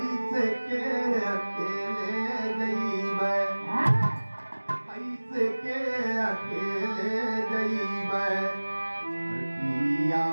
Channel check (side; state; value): both; inverted; correlation -1.00